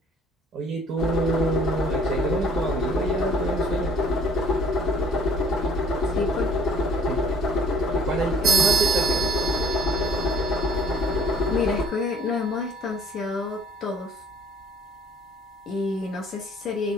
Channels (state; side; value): normal; both; correlation 0.56